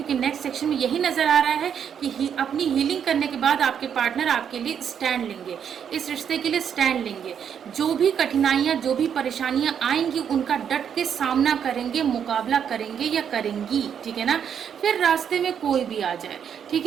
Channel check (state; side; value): quieter; left; 8.1 dB